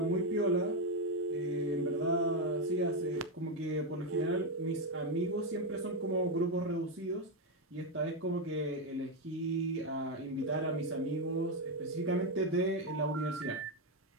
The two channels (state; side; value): normal; both; correlation 0.05